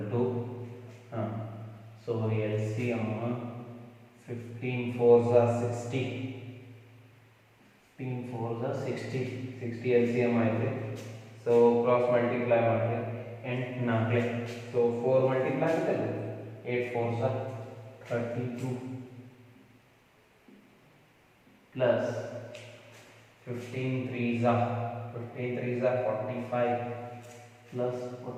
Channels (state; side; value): identical; both; correlation 1.00